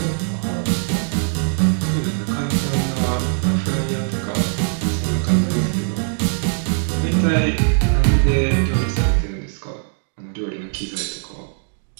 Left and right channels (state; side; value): silent; left; digital silence